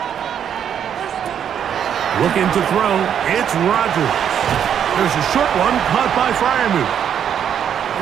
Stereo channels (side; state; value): left; quieter; 8.8 dB